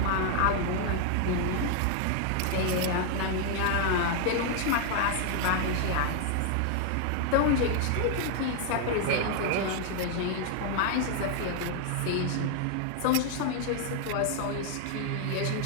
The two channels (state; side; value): different; both; correlation 0.00